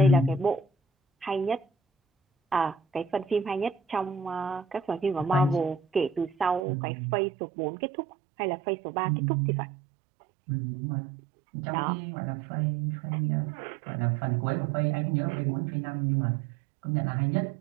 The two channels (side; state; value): left; drops out; at 6.6 s